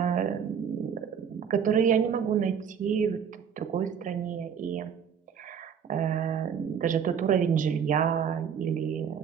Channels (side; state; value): left; quieter; 7.5 dB